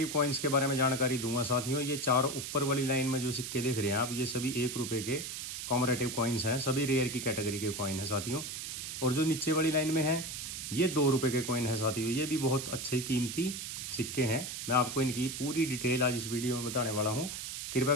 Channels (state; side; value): noise; right; hiss, 6 dB below the sound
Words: कॉइन्स के बारे में जानकारी दूंगा। साथियों, ये चार ऊपर वाली लाइन में जो सिक्के देख रहे हैं आप, ये सभी 1 रुपये के कॉमरेटिव कॉइन्स हैं, सभी रेयर की कैटेगरी के कॉइन है साथियों। और जो नीचे वाली लाइन में है ये 2 रुपये के कॉइन है साथियों। ये भी बहुत अच्छे कीमती सिक्के हैं। मैं आपको इनकी पूरी डिटेल आज इस वीडियो में बताने वाला हूँ। कृपया